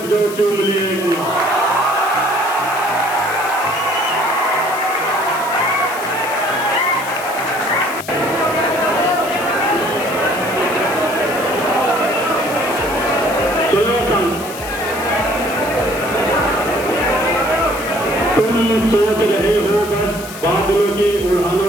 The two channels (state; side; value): noise; left; hiss, 13 dB below the sound